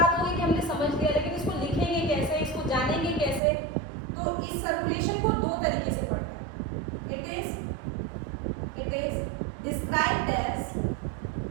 होगी कि हमने समझ लिया, लेकिन इसको लिखेंगे कैसे, इसको जानेंगे कैसे? तो इस सर्कुलेशन को 2 तरीके से पढ़ना है। इट इज डिस्क्राइब्ड एज,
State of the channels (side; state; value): left; drops out; at 3.4 s